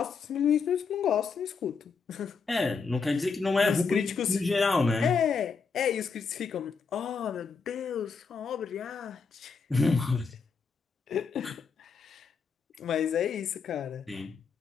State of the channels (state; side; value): quieter; right; 5.2 dB